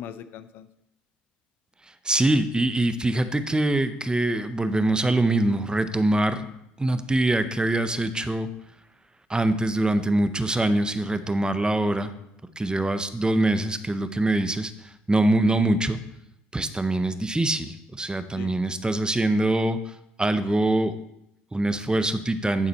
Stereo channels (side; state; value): both; normal; correlation 0.86